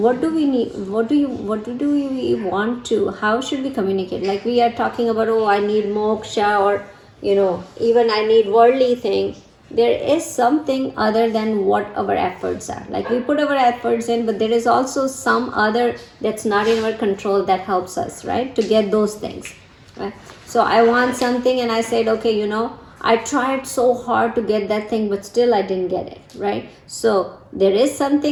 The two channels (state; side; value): identical; both; correlation 1.00